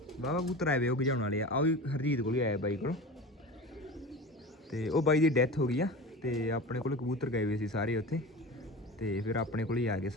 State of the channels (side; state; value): both; normal; correlation 0.32